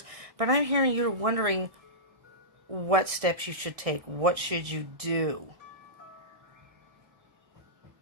but I'm hearing you're wondering what steps you should take. What should you do?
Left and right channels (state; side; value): late; left; 1.6 ms